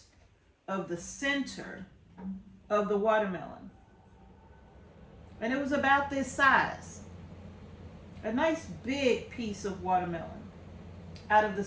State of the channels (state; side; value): identical; both; correlation 1.00